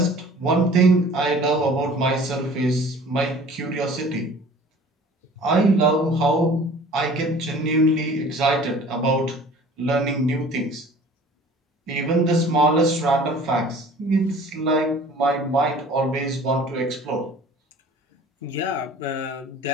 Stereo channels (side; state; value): both; normal; correlation 0.47